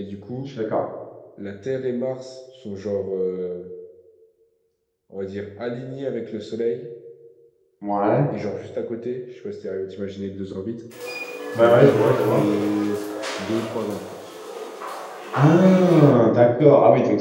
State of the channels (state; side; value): identical; both; correlation 1.00